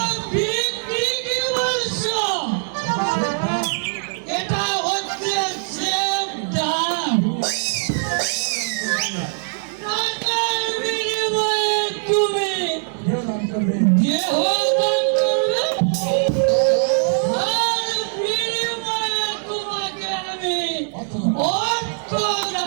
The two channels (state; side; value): silent; left; 58 dB below the other